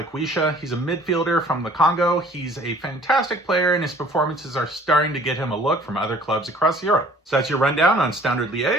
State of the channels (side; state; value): both; normal; correlation 0.53